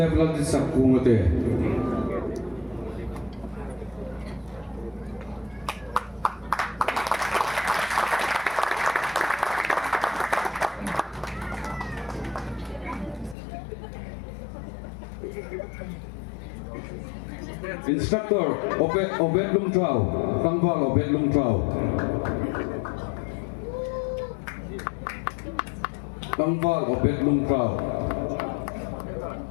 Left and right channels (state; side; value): drops out; right; at 13.4 s